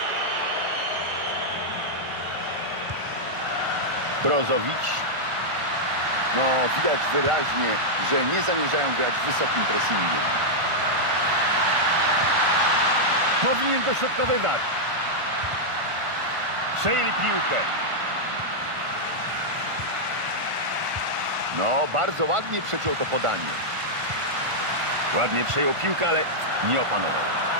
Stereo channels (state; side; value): late; left; 1.4 ms